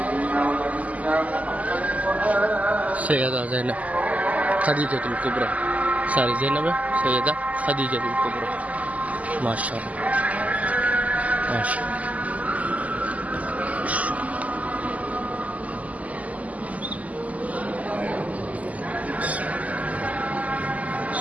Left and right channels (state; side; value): late; left; 0.073 ms